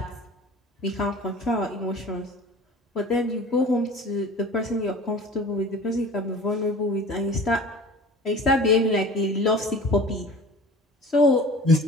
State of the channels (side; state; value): both; normal; correlation 0.41